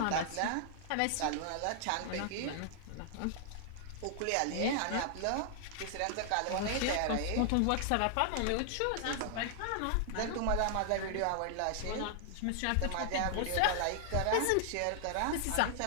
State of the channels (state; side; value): different; both; correlation 0.00